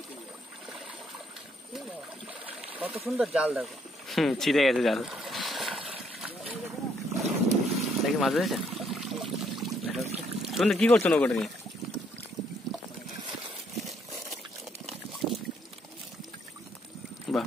কত সুন্দর জাল দেখো। ছিঁড়ে গেছে জাল। দেখি মাছ ধরেছে। তুমি কি করছো নৌকোটা নিয়ে? বাহ,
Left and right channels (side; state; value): both; normal; correlation 0.70